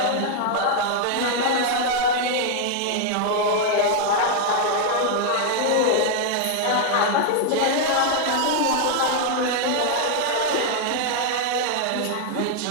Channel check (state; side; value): different; both; correlation 0.00